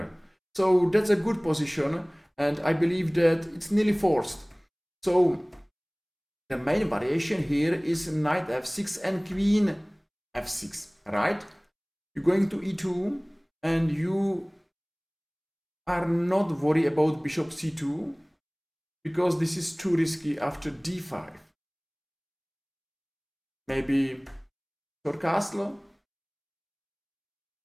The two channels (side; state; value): both; identical; correlation 1.00